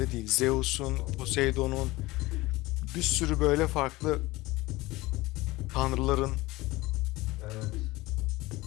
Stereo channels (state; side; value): quieter; right; 20.1 dB